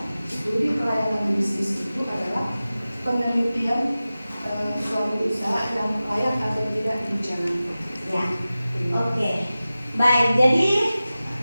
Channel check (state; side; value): inverted; both; correlation -0.96